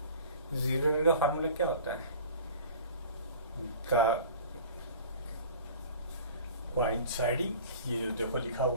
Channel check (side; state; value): both; inverted; correlation -0.42